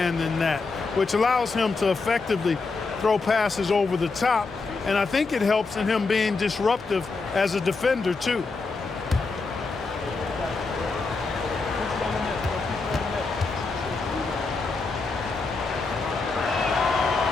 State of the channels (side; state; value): right; quieter; 4.1 dB